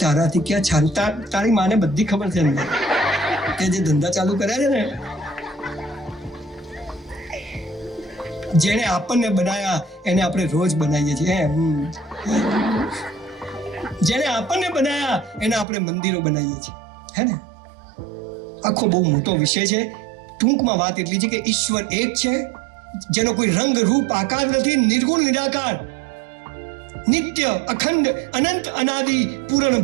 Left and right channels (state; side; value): drops out; left; at 15.7 s